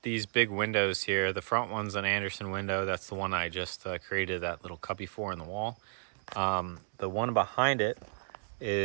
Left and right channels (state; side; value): silent; left; digital silence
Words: these big windows here. The front one's an Anderson window. That's the one I just created that little cubby for in the wall. The one behind it